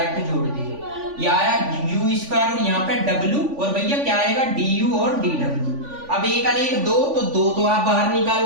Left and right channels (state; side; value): late; left; 3.5 ms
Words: जोड़ दिया, ये आया u² और यहाँ पे w, और भैया क्या आएगा du और dw। अब 1 और 1 2, तो 2 तो आप बाहर